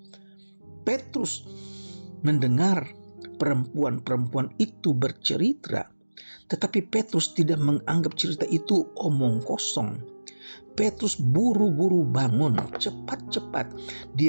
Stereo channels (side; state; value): both; inverted; correlation -1.00